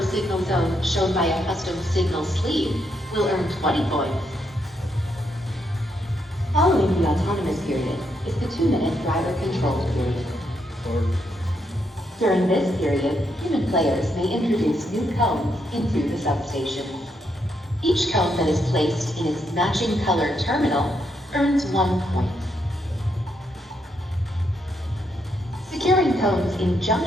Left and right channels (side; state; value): both; normal; correlation 0.78